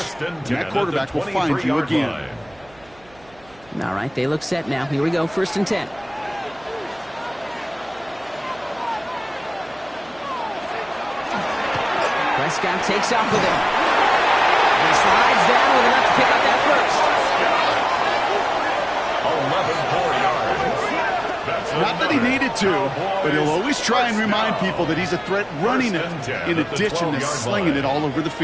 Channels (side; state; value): right; noise; hum, 28 dB below the sound